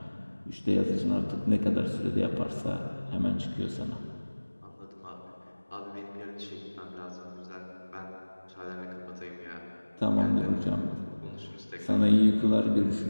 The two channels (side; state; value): both; inverted; correlation -1.00